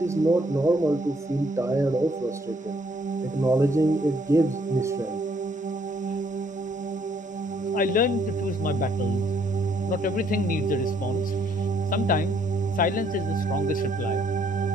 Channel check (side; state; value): both; normal; correlation 0.67